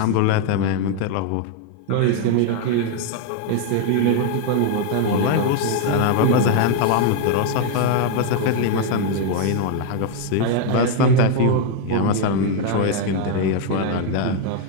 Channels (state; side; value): different; both; correlation 0.00